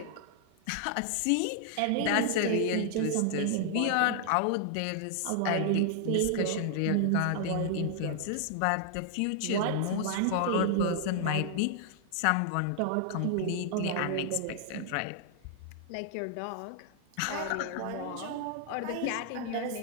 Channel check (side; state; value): both; different; correlation 0.00